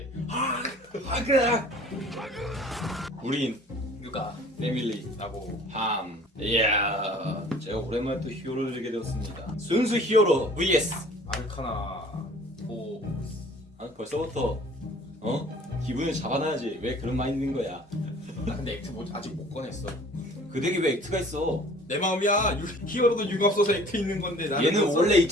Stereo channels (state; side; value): normal; both; correlation 0.50